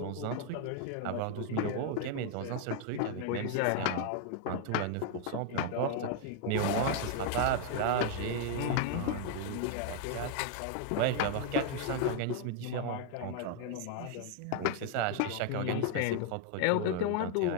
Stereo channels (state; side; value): different; both; correlation 0.00